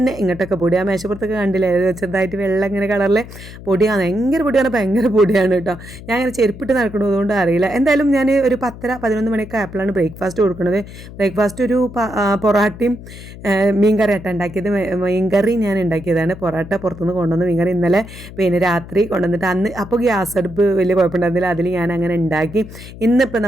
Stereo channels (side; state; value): left; noise; hum, 15 dB below the sound